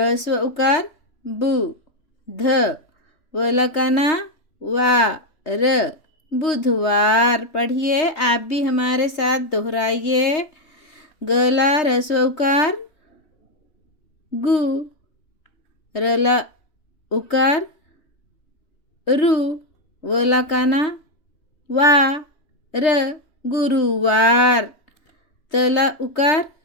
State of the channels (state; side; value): late; right; 3.2 ms